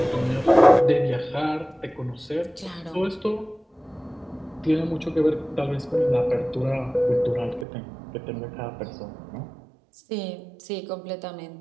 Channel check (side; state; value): left; drops out; at 7.7 s